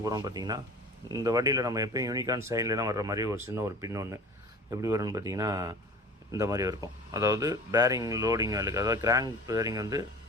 போகிறோம்னு பார்த்திங்கன்னா, இந்த வண்டியில் நம்ம எப்போயும் யூனிகார்ன் சைட்லாம் வர்ற மாதிரி ஒரு சின்ன ஒரு பின் ஒன்று எப்படி வரும்னு பார்த்திங்கன்னா இந்த மாதிரி இருக்கும். அதாவது பேரிங் லோடிங் வேலைக்கு, அதாவது கிராங்க் பேரிங் வந்து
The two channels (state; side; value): normal; both; correlation 0.41